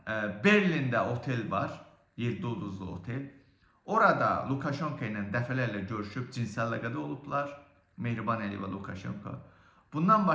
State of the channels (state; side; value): identical; both; correlation 1.00